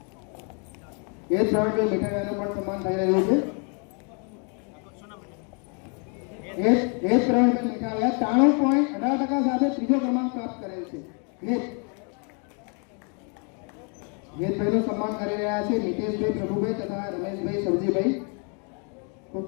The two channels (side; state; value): right; quieter; 38.0 dB